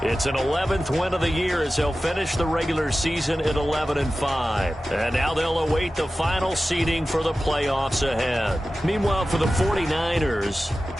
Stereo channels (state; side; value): normal; both; correlation 0.95